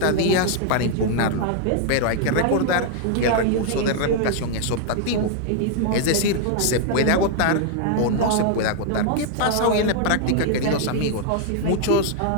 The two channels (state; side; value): different; both; correlation 0.00